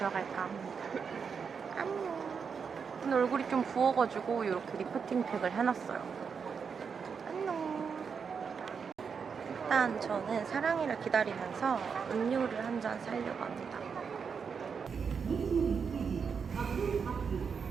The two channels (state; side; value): quieter; left; 6.1 dB